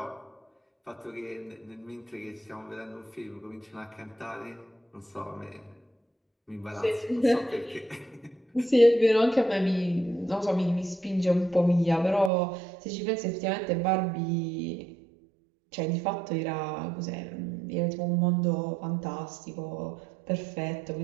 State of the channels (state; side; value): drops out; left; at 12.3 s